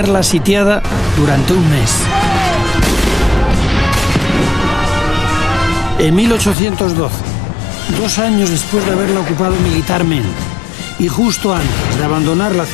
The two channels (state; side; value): drops out; right; at 6.6 s